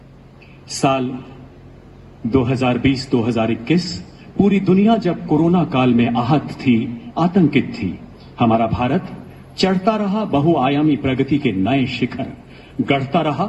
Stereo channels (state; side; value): identical; both; correlation 1.00